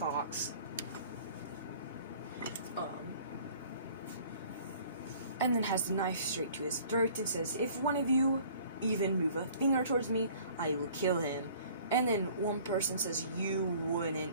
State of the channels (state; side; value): inverted; both; correlation -0.51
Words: And then has the knife straight to his throat and says, "If one of you even move a finger towards me, I will kill him." And then one person says, "You wouldn't,"